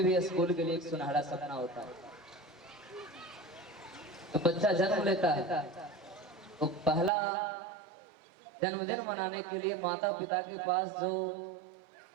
भी स्कूल के लिए एक सुनहरा सपना होता है। तो बच्चा जन्म लेता है तो पहला जन्मदिन मनाने के लिए माता पिता के पास जो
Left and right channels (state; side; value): drops out; left; at 7.1 s